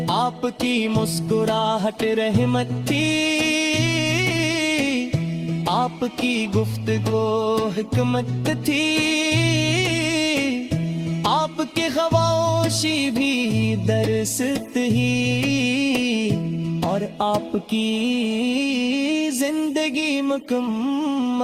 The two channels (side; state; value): both; identical; correlation 1.00